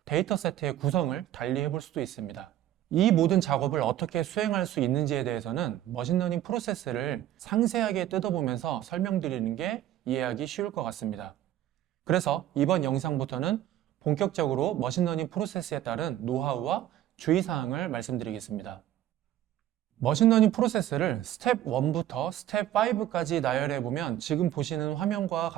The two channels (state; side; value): quieter; left; 12.5 dB